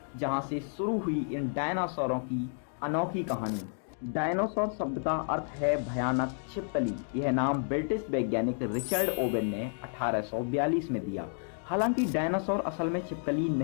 जहां से शुरू हुई इन डायनासोरों की अनोखी कहानी। डायनासोर शब्द का अर्थ है भयानक छिपकली। यह नाम ब्रिटिश वैज्ञानिक रिचर्ड ओवेन ने 1842 में दिया। हालांकि डायनासोर असल में छिपकली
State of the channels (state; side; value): silent; right; 57 dB below the other